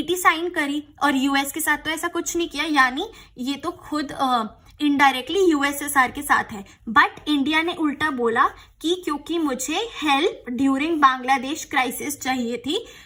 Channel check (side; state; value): both; identical; correlation 1.00